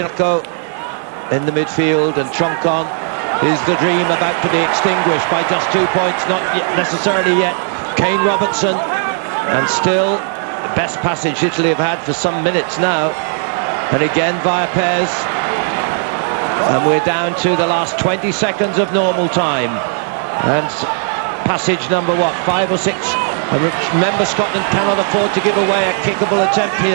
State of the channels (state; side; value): silent; left; 57 dB below the other